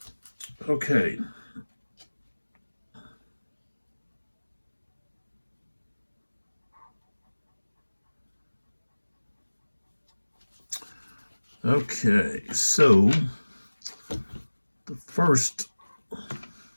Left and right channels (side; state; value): both; inverted; correlation -1.00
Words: Okay. Okay, so the first,